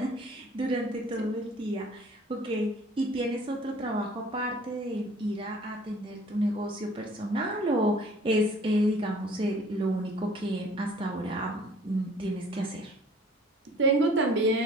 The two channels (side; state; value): both; normal; correlation 0.53